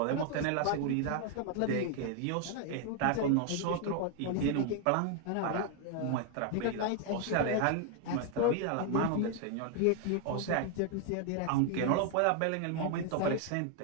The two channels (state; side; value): different; both; correlation 0.00